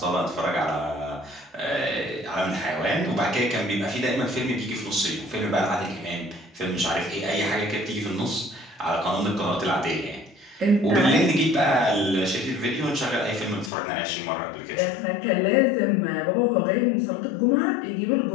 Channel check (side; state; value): right; drops out; at 13.7 s